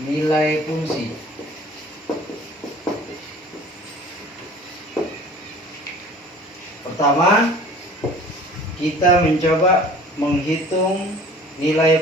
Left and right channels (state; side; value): normal; both; correlation 0.47